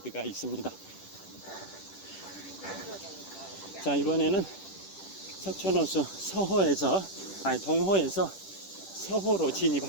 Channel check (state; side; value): late; right; 10 ms